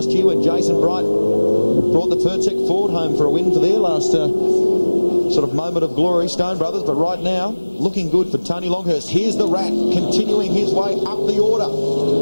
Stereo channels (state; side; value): inverted; both; correlation -1.00